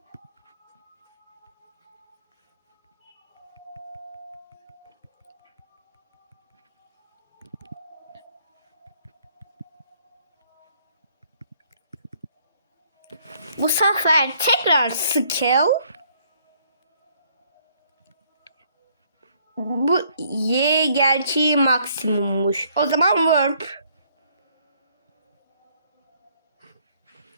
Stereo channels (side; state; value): both; inverted; correlation -0.65